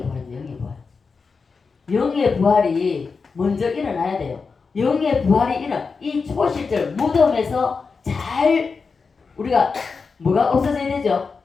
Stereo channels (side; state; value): right; quieter; 4.9 dB